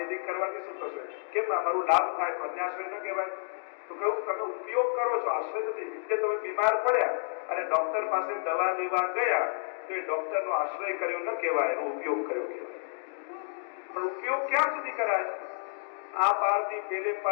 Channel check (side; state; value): right; silent; digital silence